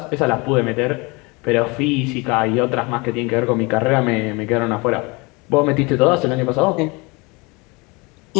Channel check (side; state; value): right; quieter; 26.7 dB